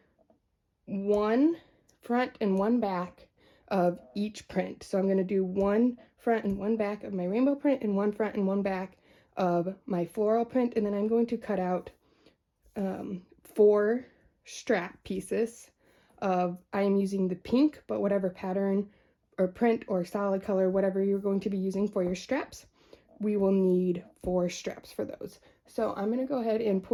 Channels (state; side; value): identical; both; correlation 1.00